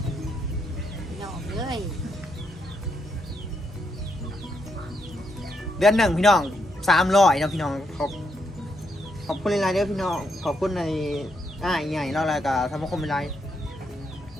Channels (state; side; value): normal; both; correlation 0.79